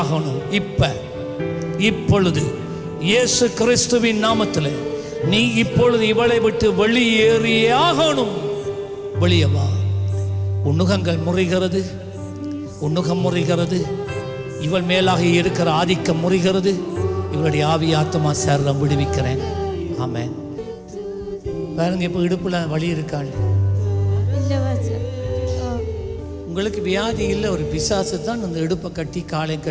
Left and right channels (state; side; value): identical; both; correlation 1.00